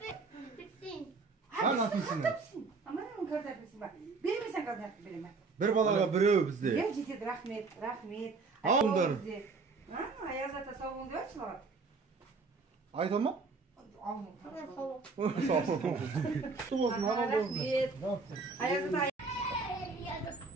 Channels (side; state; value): left; quieter; 4.2 dB